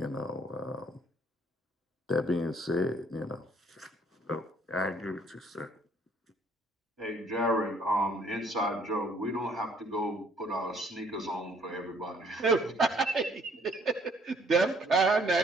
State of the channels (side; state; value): both; normal; correlation 0.62